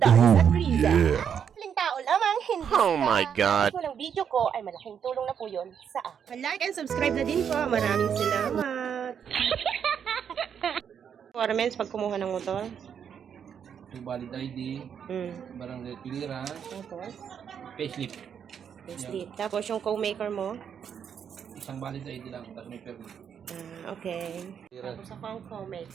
at Riza. Maling tao lamang, hindi Oh my God. Kung ang video ko ay malaking tulong na po yun sa akin. Like and subscribe na din po. Maraming salamat. Requirements pag kumuha ng motor. Yung valid ID, barangay clearance, Tapos, payslip. sleep. Tapos yung co-maker mo. Isang valid ID lang, tapos may permit. Okay. Clearance. Tapos ako ang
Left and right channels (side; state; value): left; quieter; 7.9 dB